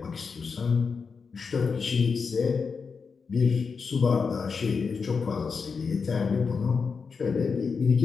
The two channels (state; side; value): quieter; right; 5.3 dB